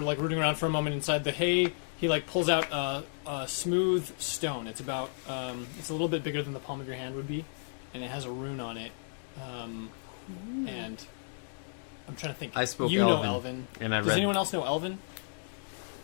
rooting around for a moment inside the hay, he like pulls out a smooth stone. It's about it's a little bit bigger than the palm of your hand would be, and it has a rune on it. And I'm trying to think. I spoke You know Elven, Elven. and I Does read. anyone else know Elven?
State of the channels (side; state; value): right; silent; digital silence